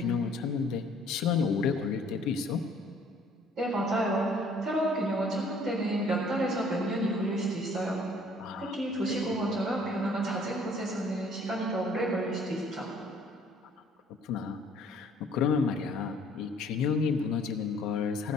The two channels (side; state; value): both; normal; correlation 0.58